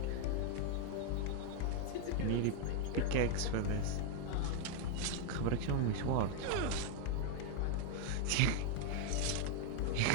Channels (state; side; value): different; both; correlation 0.00